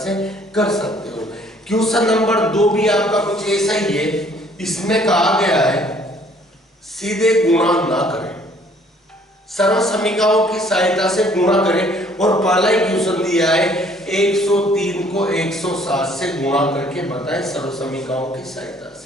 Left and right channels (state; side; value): normal; both; correlation 0.59